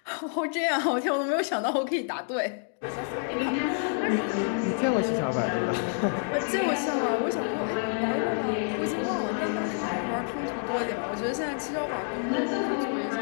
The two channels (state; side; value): silent; right; 59 dB below the other